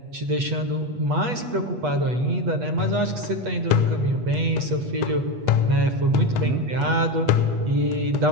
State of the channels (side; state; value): left; late; 8.3 ms